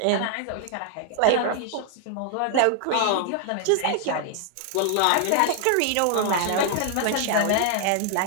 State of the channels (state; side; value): different; both; correlation 0.00